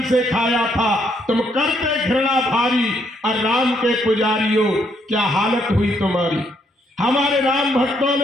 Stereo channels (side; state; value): both; normal; correlation 0.72